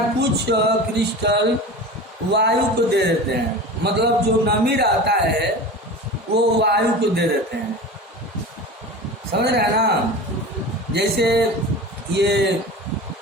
कुछ क्रिस्टल वायु को दे देते हैं। मतलब जो नमी रहता है वो वायु को दे देते हैं, समझ रहे हैं ना। जैसे ये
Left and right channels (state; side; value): normal; both; correlation 0.33